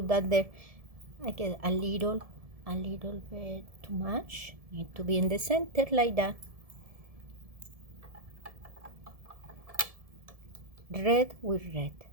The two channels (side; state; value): left; late; 1.7 ms